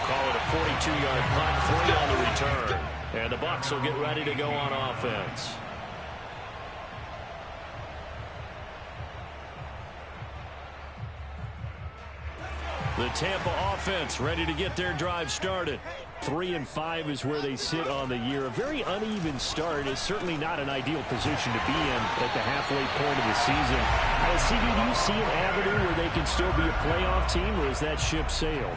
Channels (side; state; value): both; identical; correlation 1.00